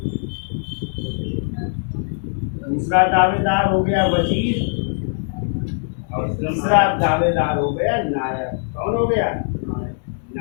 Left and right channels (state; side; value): silent; right; digital silence